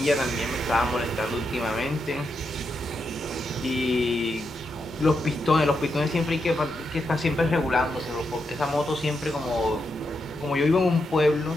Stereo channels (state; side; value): normal; both; correlation 0.84